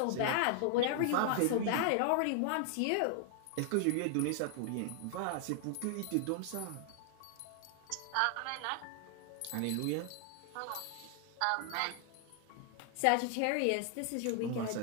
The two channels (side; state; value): both; different; correlation 0.00